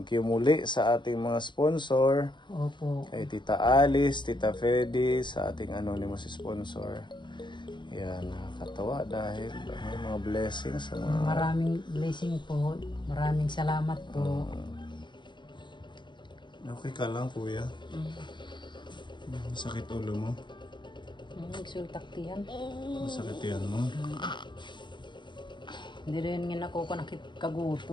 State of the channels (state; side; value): late; right; 0.22 ms